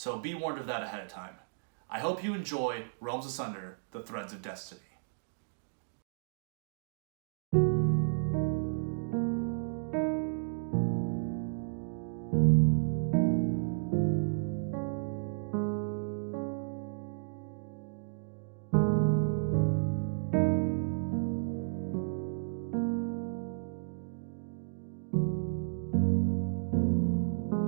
be warned of that ahead of time. I hope you enjoy Realms Asunder, The Threads of Destiny.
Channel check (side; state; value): left; silent; digital silence